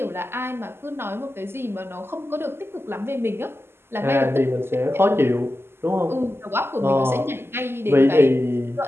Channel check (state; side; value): late; left; 0.12 ms